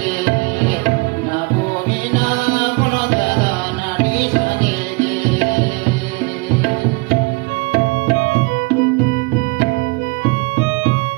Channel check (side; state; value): left; quieter; 28.1 dB